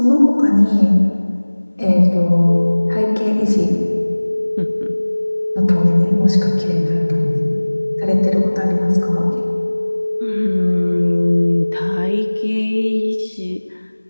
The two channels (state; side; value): inverted; both; correlation -1.00